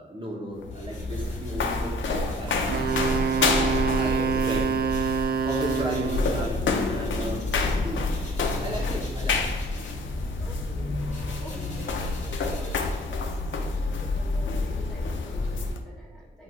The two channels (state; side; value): normal; both; correlation 0.51